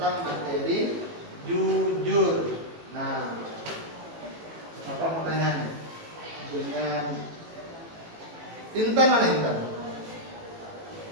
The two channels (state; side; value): late; left; 18 ms